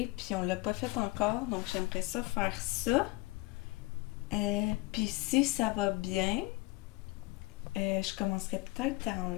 Puis on l'a pas fait encore. Donc j'aimerais ça faire ça. Puis si ça va bien, je commencerai peut-être à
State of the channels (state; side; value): quieter; right; 22.4 dB